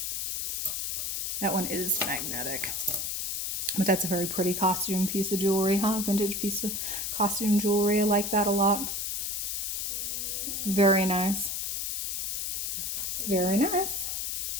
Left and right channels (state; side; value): noise; left; hiss, 2 dB below the sound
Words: That one is magnetic. But that's a very pretty costume piece of jewelry, huh? Vintage piece of costume jewelry. I like that a lot. Very nice. Very nice.